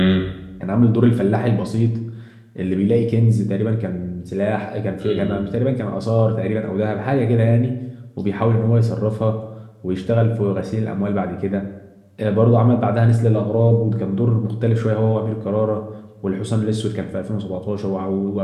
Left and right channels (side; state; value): both; identical; correlation 1.00